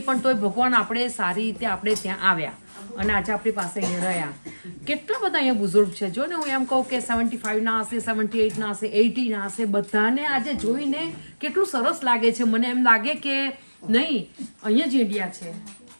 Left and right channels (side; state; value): both; inverted; correlation -1.00